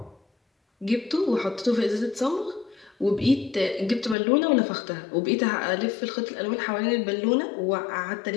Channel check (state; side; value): drops out; right; at 4.2 s